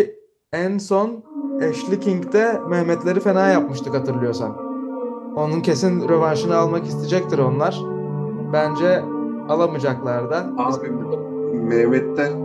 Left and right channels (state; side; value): identical; both; correlation 1.00